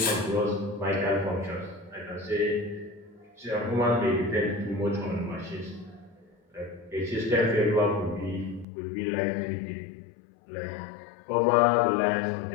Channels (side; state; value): right; drops out; at 8.7 s